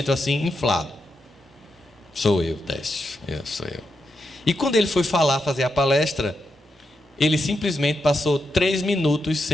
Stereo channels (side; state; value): both; normal; correlation 0.84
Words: assim, inflado. Sou eu, Décio, sou eu. E quando ele foi fazer a palestra, ele simplesmente passou 3 minutos